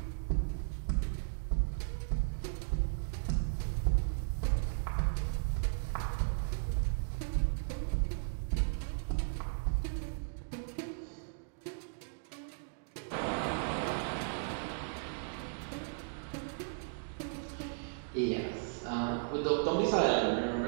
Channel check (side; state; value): left; silent; digital silence